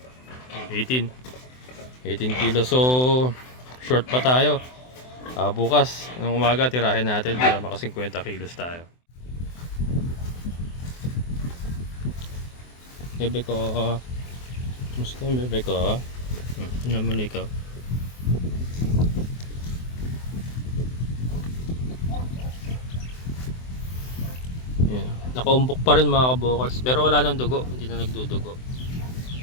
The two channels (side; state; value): right; late; 24 ms